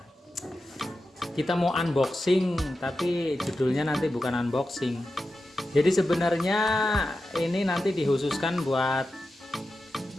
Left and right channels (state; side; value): normal; both; correlation 0.91